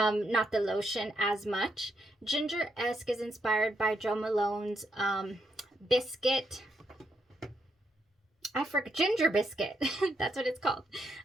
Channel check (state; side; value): normal; both; correlation 0.78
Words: the lotion as much. Ginger-esque is inspired by Jo Malone's biscuit. I forgot, ginger biscuit. That's what it's called.